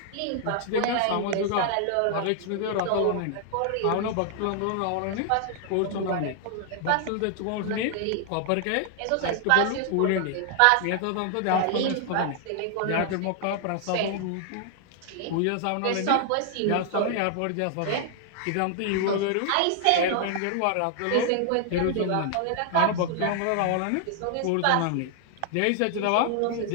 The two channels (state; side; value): different; both; correlation 0.00